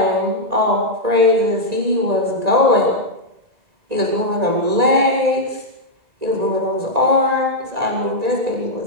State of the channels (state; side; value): late; left; 1.9 ms